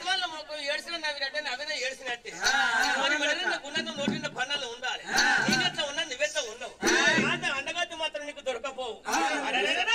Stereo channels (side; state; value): both; identical; correlation 1.00